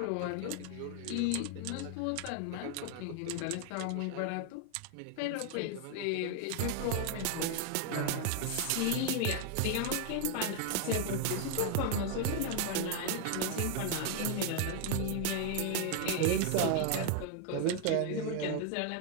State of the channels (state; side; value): different; both; correlation 0.00